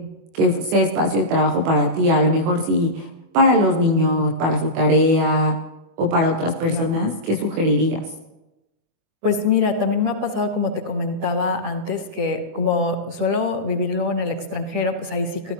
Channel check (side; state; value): left; late; 24 ms